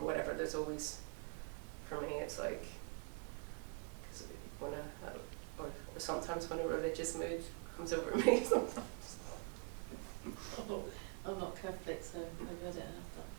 There's always, for me, it's like, because or sometimes when a religious mood comes over me, sometimes. Oh, I'm not Catholic, so maybe I don't have that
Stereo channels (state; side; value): quieter; left; 33.7 dB